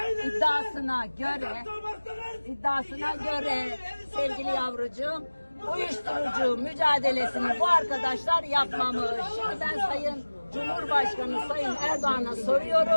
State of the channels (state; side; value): inverted; both; correlation -1.00